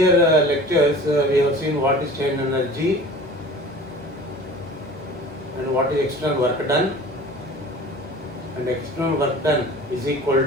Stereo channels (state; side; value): normal; both; correlation 0.42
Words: lectures, we have seen what is strain energy and what is external work done, and external work done is equal